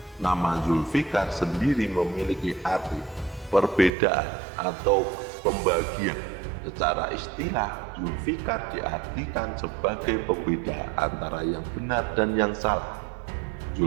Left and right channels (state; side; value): drops out; left; at 3.9 s